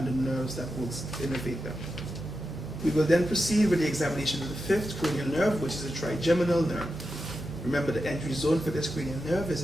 the nerves that will innervate them. We will then proceed with the examination of the fifth cranial nerve, which is the trigeminal nerve. Remember, the entry zone for this cranial nerve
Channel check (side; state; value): both; normal; correlation 0.89